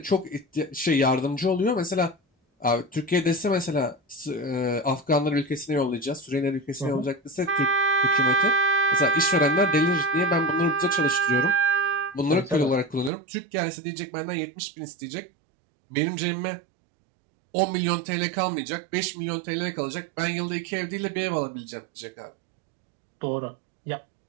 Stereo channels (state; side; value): drops out; left; at 13.1 s